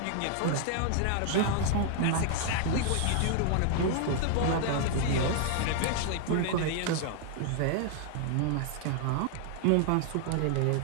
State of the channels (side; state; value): both; different; correlation 0.00